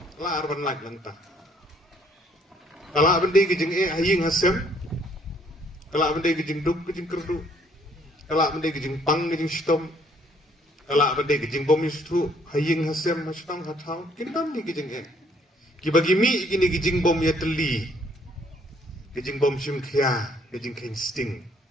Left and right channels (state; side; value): normal; both; correlation 0.64